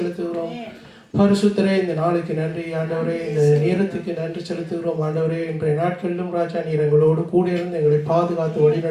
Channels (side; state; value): both; identical; correlation 1.00